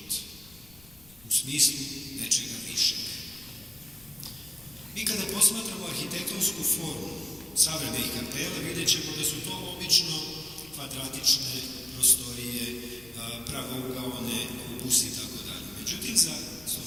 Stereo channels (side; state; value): left; noise; rumble, 24 dB below the sound